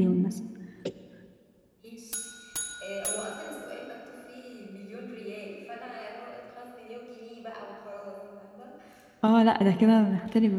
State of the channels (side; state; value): both; identical; correlation 1.00